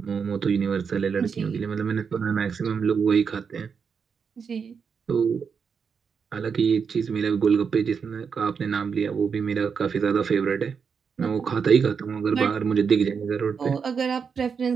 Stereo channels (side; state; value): left; quieter; 6.2 dB